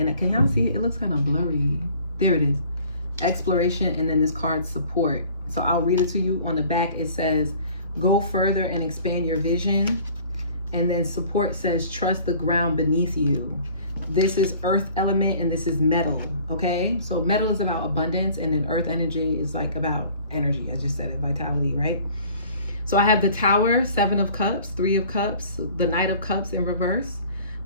can y'all see it? It looks kind of blurry. There it is. Exploration, and then this card Support. So I'll read it to you. On the back it says, go further and expand your vision. And then Support says, trust the ground beneath you. This is earth element and this is metal. Okay, so metal is about abundance, and then earth energy is like about energy. I just said it, vitality, right? So I have the Tower, 7 of Cups, 3 of Cups, the Knight of Cups in reverse,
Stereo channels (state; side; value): inverted; both; correlation -0.50